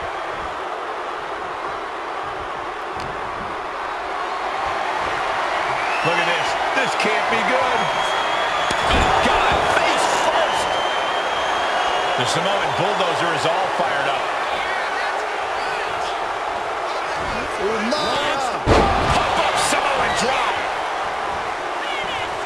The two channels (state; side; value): identical; both; correlation 1.00